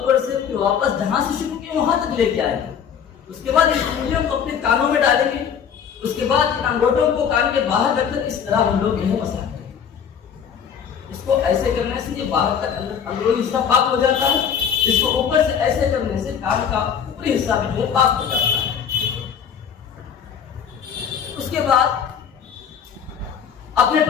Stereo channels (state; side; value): quieter; right; 7.7 dB